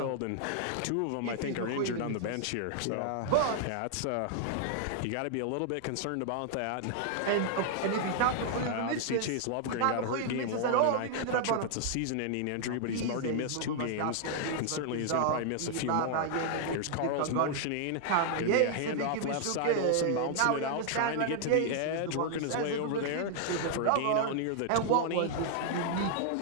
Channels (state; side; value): different; both; correlation -0.01